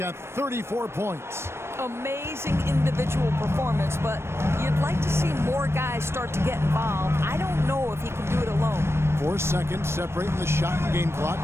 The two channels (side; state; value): left; late; 0.12 ms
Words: 34 points. Amazing individual performance, but you'd like to see more guys start to get involved. I don't know if he can do it alone. 4 seconds separating the shot and game